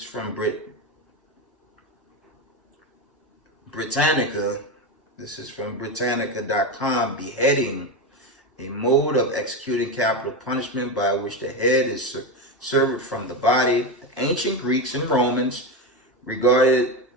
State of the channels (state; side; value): normal; both; correlation 0.15